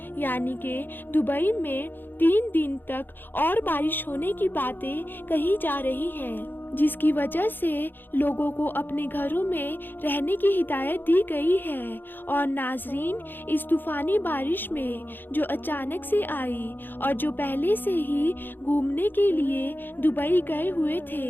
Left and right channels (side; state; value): right; late; 0.095 ms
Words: यानी कि दुबई में 3 दिन तक और बारिश होने की बातें कही जा रही हैं, जिसकी वजह से लोगों को अपने घरों में रहने की हिदायत दी गई है। और नाजरीन, इस तूफानी बारिश में जो अचानक से आई और जो पहले से ही घूमने के लिए दुबई गए हुए